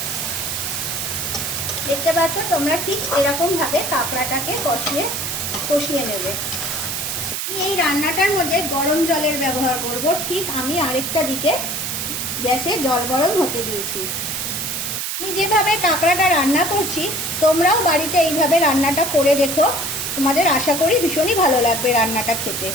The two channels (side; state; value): right; noise; hiss, 3 dB below the sound